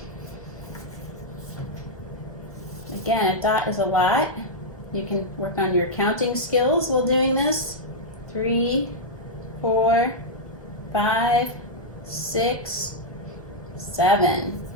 Again, a dot is a lot. You can work on your counting skills while doing this. 3, 4, 5, 6, 7.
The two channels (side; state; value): right; late; 1.2 ms